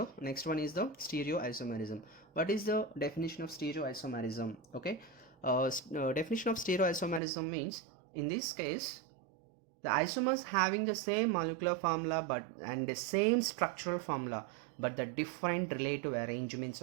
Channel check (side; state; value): left; drops out; at 7.2 s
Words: Next one is the stereoisomerism. What is the definition of stereoisomerism? Okay, definition of stereoisomerism means in this case the isomers having the same molecular formula and the same structural formula but the different relative arrangements